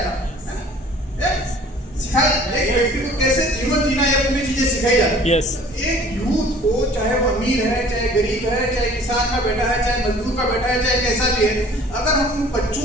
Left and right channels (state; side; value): normal; both; correlation 0.50